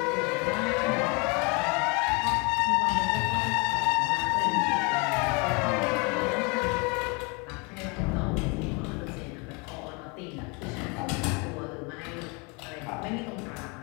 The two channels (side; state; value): right; quieter; 30.7 dB